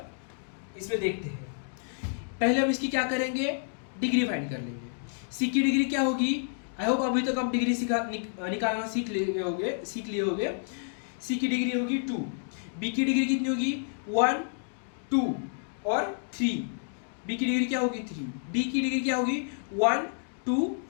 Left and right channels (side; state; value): right; silent; digital silence